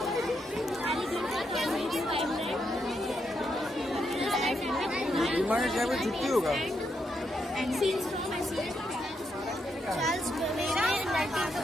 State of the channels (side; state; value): both; normal; correlation 0.80